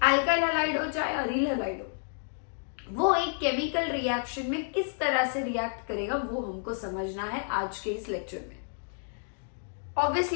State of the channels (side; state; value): right; silent; digital silence